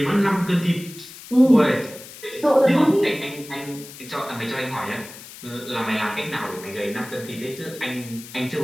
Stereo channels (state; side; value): noise; left; hiss, 16 dB below the sound